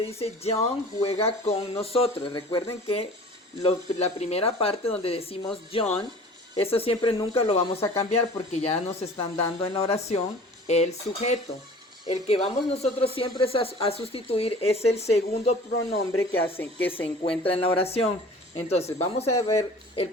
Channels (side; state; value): both; normal; correlation 0.44